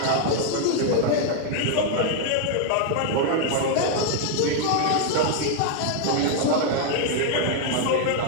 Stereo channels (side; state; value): both; different; correlation 0.00